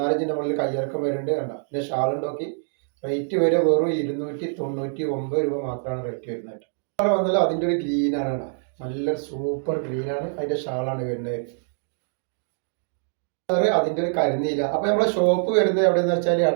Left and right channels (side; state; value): left; silent; digital silence